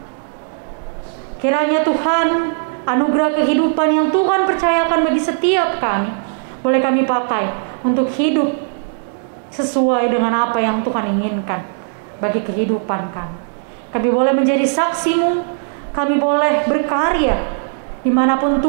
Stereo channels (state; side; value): silent; left; digital silence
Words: Kiranya Tuhan, anugerah kehidupan yang Tuhan percayakan bagi setiap kami, boleh kami pakai untuk hidup sesuai dengan apa yang Tuhan inginkan bagi kehidupan kami. Kami boleh menjadi saksi-Mu, kami boleh berkarya dimanapun